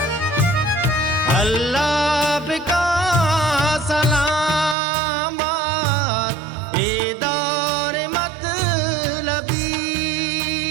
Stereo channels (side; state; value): left; drops out; at 4.8 s